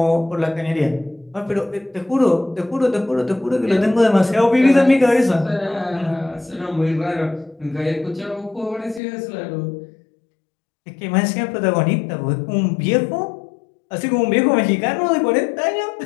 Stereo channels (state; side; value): drops out; right; at 9.0 s